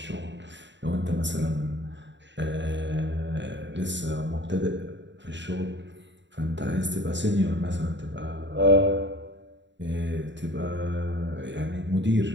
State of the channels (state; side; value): late; left; 0.53 ms